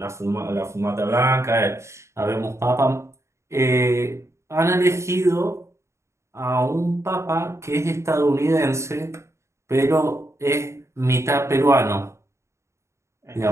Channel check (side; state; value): left; late; 0.14 ms